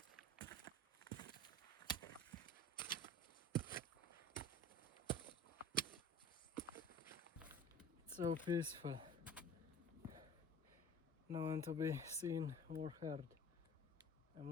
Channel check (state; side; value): normal; both; correlation 0.42